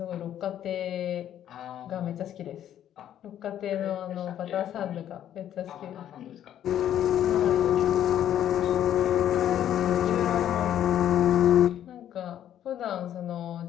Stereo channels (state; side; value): quieter; right; 10.9 dB